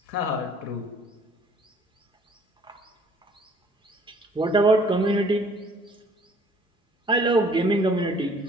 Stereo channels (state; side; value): normal; both; correlation 0.57